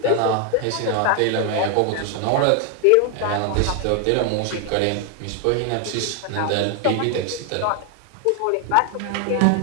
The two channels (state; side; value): different; both; correlation 0.00